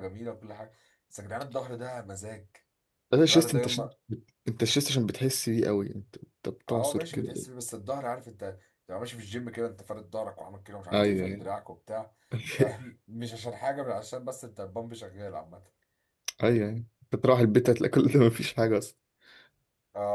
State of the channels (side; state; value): both; identical; correlation 1.00